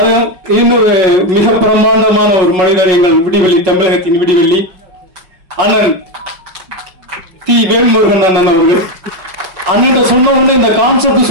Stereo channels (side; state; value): left; late; 5.4 ms